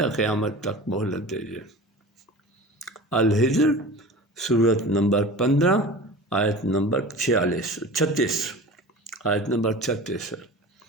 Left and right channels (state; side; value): normal; both; correlation 0.36